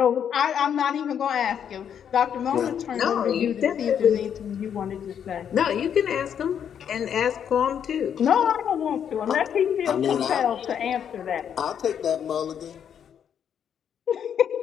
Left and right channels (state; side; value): quieter; right; 8.5 dB